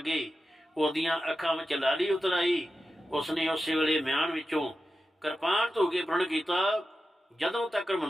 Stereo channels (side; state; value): both; normal; correlation 0.91